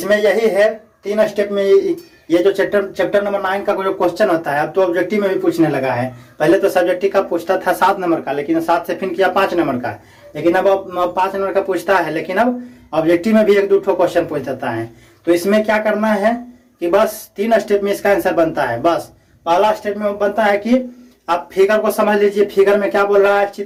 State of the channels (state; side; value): identical; both; correlation 1.00